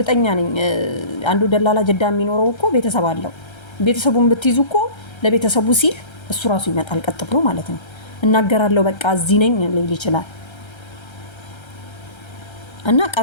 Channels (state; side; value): late; right; 1.3 ms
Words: ነኝ አንዱ ደላላ ጅዳ የሚኖረው እኮ ቤተሰብ አለው። ቤተሰቡን ብትይዙ እኮ ለቤተሰቡ ሲል እሱ ራሱ ይመጣል ቀጥ ብሎ ማለት ነው። እናገራለሁ በቃ እዚህ ነኝ ሊል ይችላል። እና